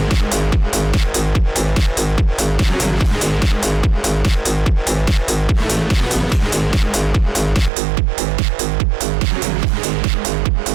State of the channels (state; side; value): drops out; left; at 7.7 s